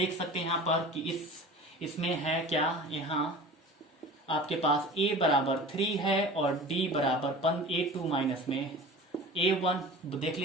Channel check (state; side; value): normal; both; correlation 0.38